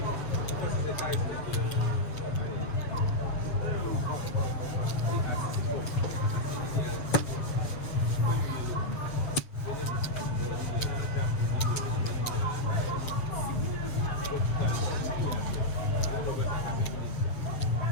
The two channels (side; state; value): right; late; 7.3 ms